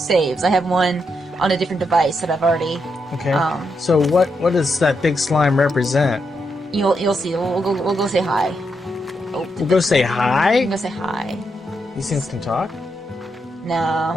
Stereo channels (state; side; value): normal; both; correlation 0.82